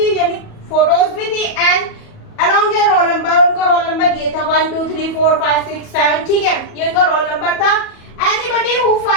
यानी फोटोज भी थी, and along your roll number, उनका रोल नंबर ये था 1 2 3 4 5 6 7, ठीक है, ये उनका रोल नंबर था। Anybody who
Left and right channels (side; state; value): right; late; 37 ms